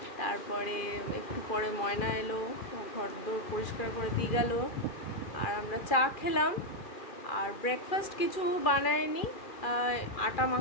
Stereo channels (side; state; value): right; late; 2.4 ms